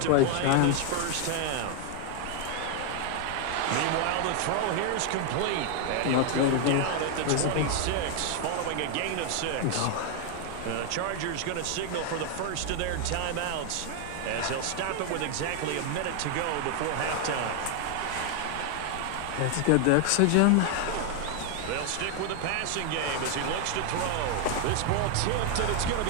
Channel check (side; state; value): both; different; correlation 0.00